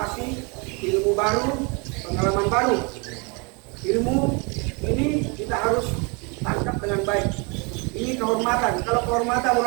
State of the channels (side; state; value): left; quieter; 31.8 dB